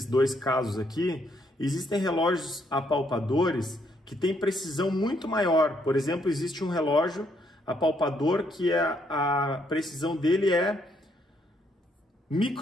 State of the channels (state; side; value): normal; both; correlation 0.72